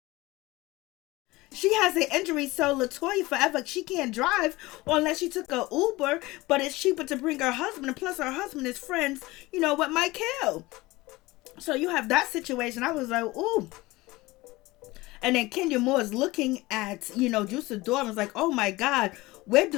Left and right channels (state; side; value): quieter; right; 20.5 dB